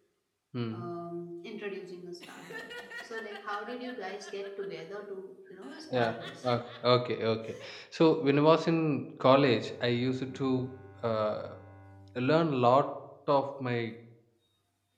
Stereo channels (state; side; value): identical; both; correlation 1.00